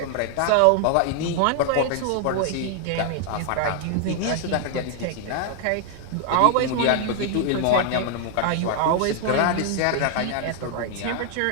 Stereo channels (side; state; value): both; different; correlation 0.00